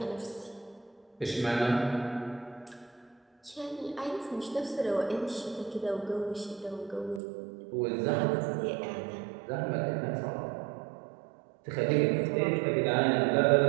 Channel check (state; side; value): drops out; left; at 7.2 s